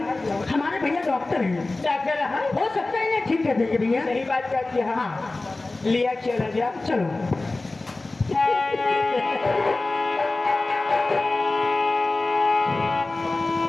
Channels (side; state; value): right; quieter; 3.1 dB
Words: हमारे भैया डॉक्टर हैं, डॉक्टर हो सकता है इन्हें ठीक कर देंगे भैया। सही बात करती है हाँ लिया चला जा चलो